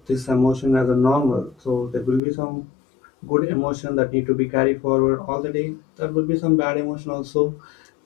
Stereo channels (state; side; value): drops out; right; at 2.2 s